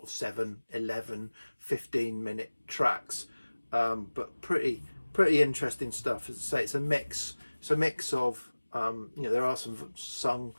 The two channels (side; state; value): both; inverted; correlation -1.00